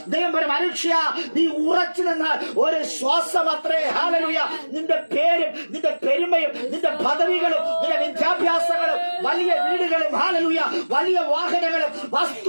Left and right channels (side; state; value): both; inverted; correlation -1.00